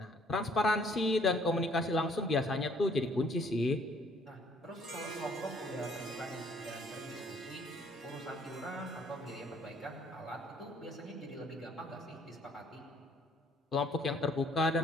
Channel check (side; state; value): both; normal; correlation 0.61